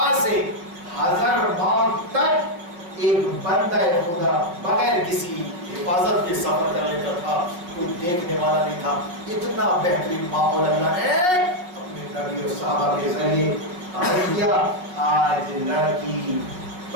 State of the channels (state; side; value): late; left; 5.5 ms